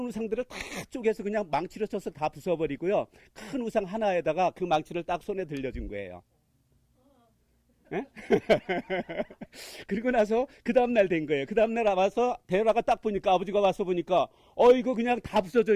우상들을 다 쪼개서 그냥 망치로 쳐서 다 부숴버리고요, 큰 우상 하나에다가 그 망치를 딱 손에 들려준 거예요. 그리고 나서 그 다음날 된 거예요. 그 다음날 와서 데라가 딱 보니까, 아버지가 와서 보니까 이거 그냥 다 부서져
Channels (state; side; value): identical; both; correlation 1.00